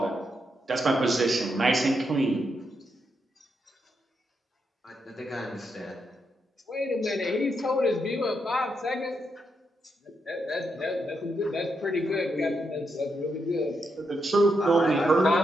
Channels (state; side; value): normal; both; correlation 0.82